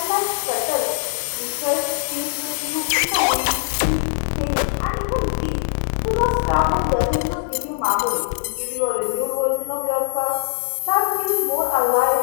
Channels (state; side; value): silent; right; digital silence